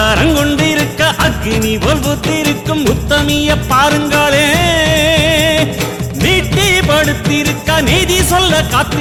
கொண்டிருக்க அக்னி போல் பூத்திருக்கும் உத்தமிய பாருங்களே. நீட்டி படுத்திருக்க நீதி சொல்ல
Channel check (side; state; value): both; identical; correlation 1.00